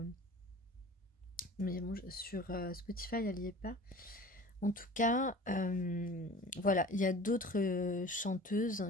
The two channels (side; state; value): both; normal; correlation 0.42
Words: Mais bon, sur Spotify, elle n'y est pas. En tout cas, voilà, il y a d'autres chanteuses